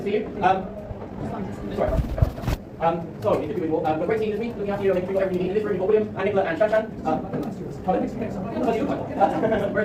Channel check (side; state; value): both; identical; correlation 1.00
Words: see you. Sorry. So, good to be with you all. We're great team this week, looking after you, making sure whatever you need in this room. You've got William and Nicola and Shanshan.